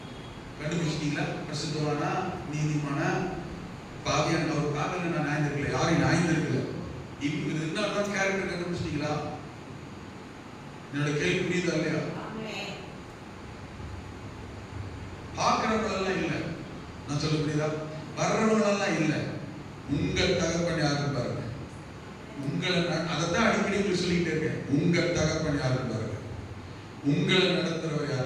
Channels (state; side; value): identical; both; correlation 1.00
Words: கண்டுபிடிச்சிட்டீங்களா? பிரசித்தவானா, நீதிமானா, பாவியான? அவர் பாவியான நான் நியாயந்திருக்கல, யாரையும் நியாயந்திருக்கல. இப்ப இருந்தாலும் கேரக்டர் கண்டுபிடிச்சிட்டீங்களா? என்னோட கேள்வி புரியுதா இல்லையா? பார்க்கிறவங்களெல்லாம் இல்லை, நான் சொல்ல புரியுதா? வர்றவங்களெல்லாம் இல்லை. உங்கள் தகப்பன் யாருன்னு பாருங்க. உங்களை அதைத்தான் அடிக்கடி உங்களுக்கு சொல்லிக்கிட்டே இருக்கேன். உங்கள் தகப்பன் யாருன்னு பாருங்க. உங்களை நடத்துறவர்